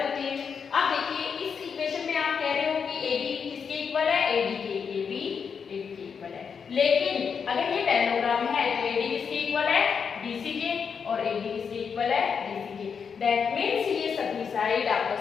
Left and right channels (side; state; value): right; quieter; 6.4 dB